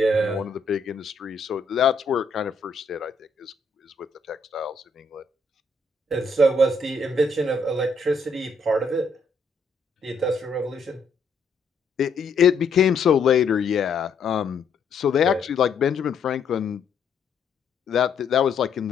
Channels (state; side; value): quieter; right; 3.8 dB